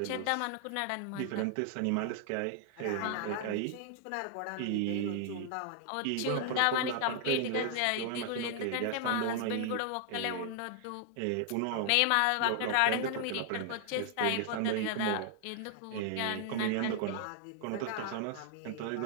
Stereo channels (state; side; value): different; both; correlation 0.00